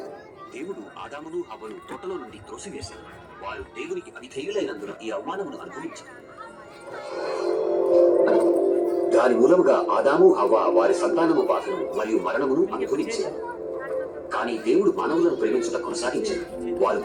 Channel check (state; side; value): identical; both; correlation 1.00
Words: దేవుడు ఆదామును హవ్వను తోటలో నుండి త్రోసివేశాడు. వారు దేవునికి అవిధేయులైనందున ఈ అవమానమును అనుభవించారు. దాని మూలముగా ఆదాము హవ్వ వారి సంతానము బాధను మరియు మరణమును అనుభవించారు. కానీ దేవుడు మానవులను ప్రేమించుట కొనసాగించాడు. వారు